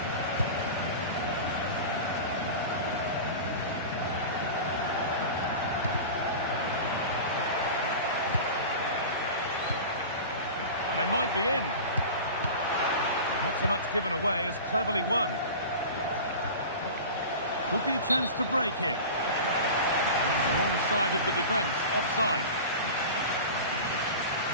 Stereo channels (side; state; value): both; inverted; correlation -0.32